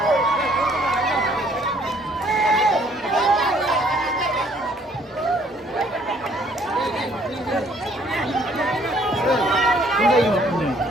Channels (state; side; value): normal; both; correlation 0.62